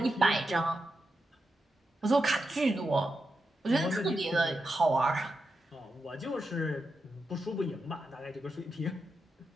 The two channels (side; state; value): both; normal; correlation 0.87